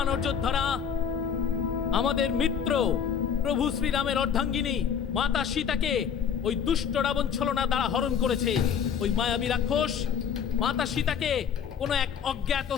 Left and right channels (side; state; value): right; quieter; 7.6 dB